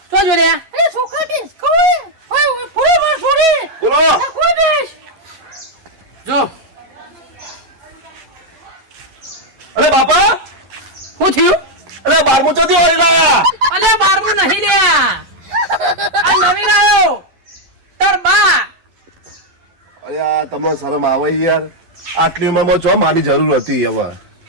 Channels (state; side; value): late; left; 11 ms